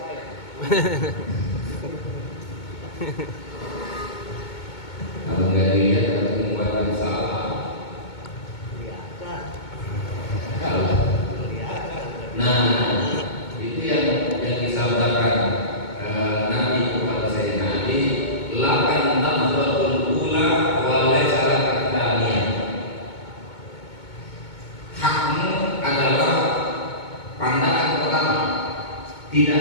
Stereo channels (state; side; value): late; right; 2.2 ms